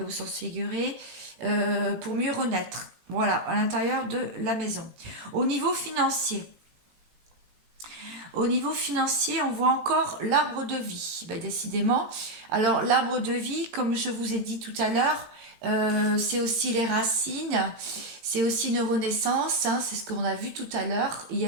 et au sens figuré, pour mieux renaître. Voilà, à l'intérieur de la maison. Au niveau financier, on voit encore l'arbre de vie. Ben, décidément. Alors, l'arbre de vie, comme je vous ai dit tout à l'heure, c'est aussi les racines, c'est aussi une renaissance, hein, c'est ce qu'on a vu tout à l'heure. Il y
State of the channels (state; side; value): late; left; 18 ms